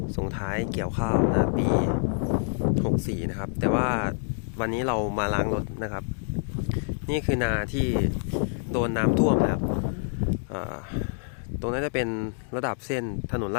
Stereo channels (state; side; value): silent; right; digital silence